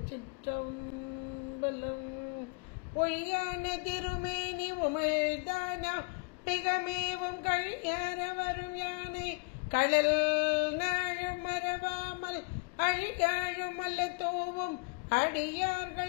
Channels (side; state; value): right; quieter; 31.9 dB